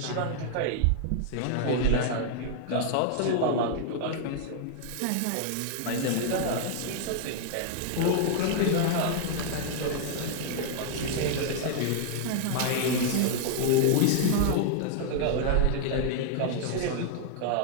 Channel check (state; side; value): different; both; correlation 0.00